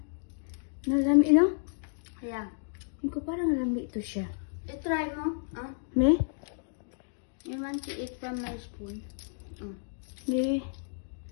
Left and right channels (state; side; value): silent; right; digital silence